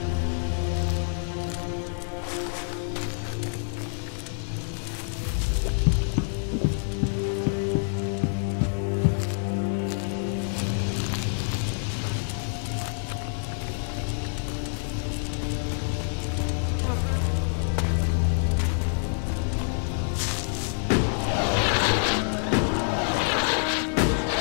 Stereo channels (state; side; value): silent; right; digital silence